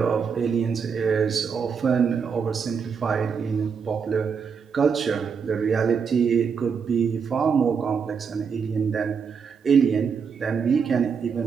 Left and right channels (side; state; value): left; quieter; 6.2 dB